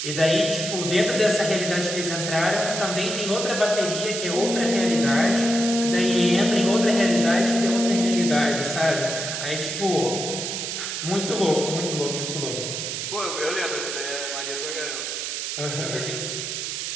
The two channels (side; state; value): right; noise; hiss, 4 dB below the sound